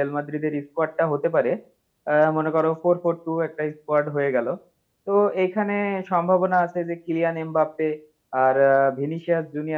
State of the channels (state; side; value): identical; both; correlation 1.00